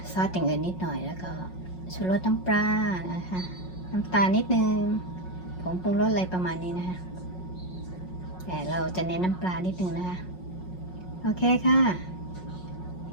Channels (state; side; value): late; right; 5.5 ms